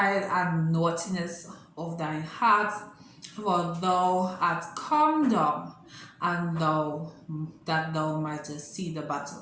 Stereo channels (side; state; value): both; identical; correlation 1.00